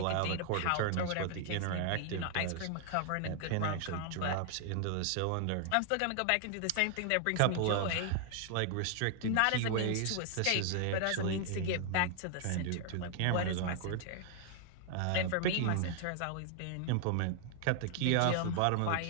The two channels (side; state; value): both; different; correlation 0.00